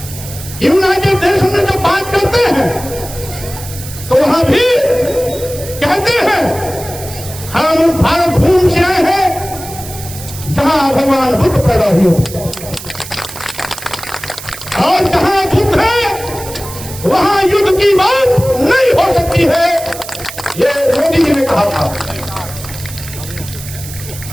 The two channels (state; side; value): noise; right; hiss, 13 dB below the sound